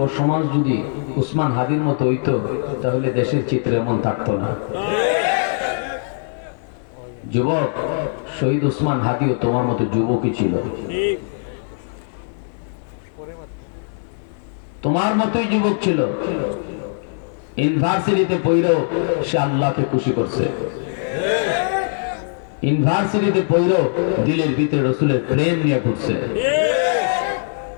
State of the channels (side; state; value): right; silent; digital silence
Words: সমাজ যদি উসমান হাদির মতো হইতো তাহলে দেশের চিত্র এমন থাকতো না। যুবক শহীদ উসমান হাদিও তোমার মতো যুবকই ছিল, তোমার মতোই যুবক ছিল। ইউনিভার্সিটিতে পড়েও সে আল্লাহকে খুশি করছে, ইউনিভার্সিটিতে পড়েও দিলের ভিতরে রসুলের প্রেম নিয়ে ঘুরছে,